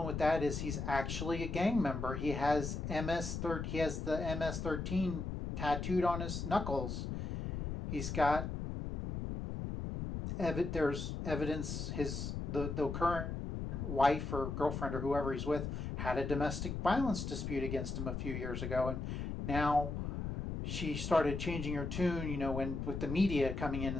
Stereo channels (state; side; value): noise; left; rumble, 4 dB below the sound